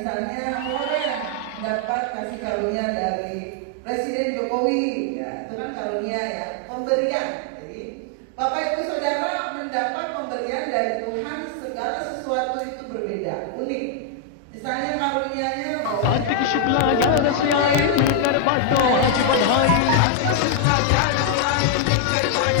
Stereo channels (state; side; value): different; both; correlation 0.00